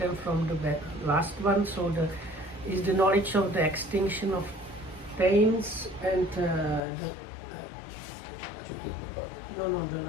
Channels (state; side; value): drops out; right; at 6.8 s